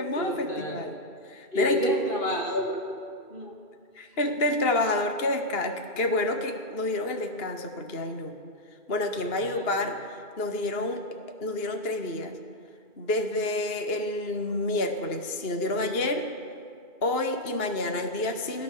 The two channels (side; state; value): right; late; 2.8 ms